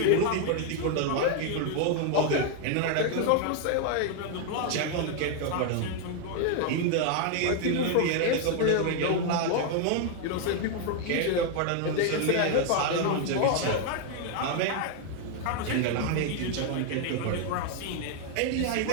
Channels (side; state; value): both; different; correlation 0.00